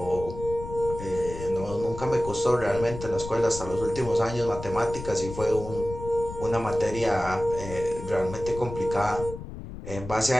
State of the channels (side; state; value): left; noise; rumble, 10 dB below the sound